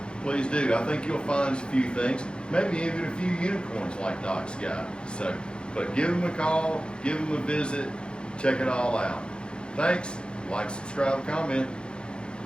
Please do. I think you'll find a few things, maybe even a few unicorns like Doc's got. So, but give them a call, give them a visit, check it all out. Thanks. Like, subscribe, comment.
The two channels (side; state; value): right; late; 0.052 ms